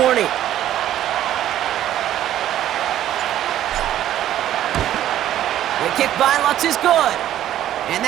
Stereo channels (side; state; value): left; quieter; 12.1 dB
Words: The kick by Lutz is good. And